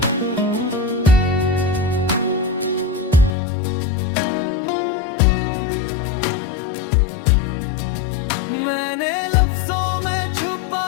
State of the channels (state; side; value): drops out; right; at 3.3 s